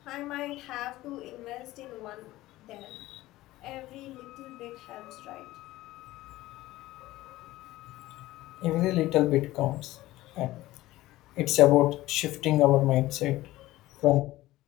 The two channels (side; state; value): right; quieter; 17.0 dB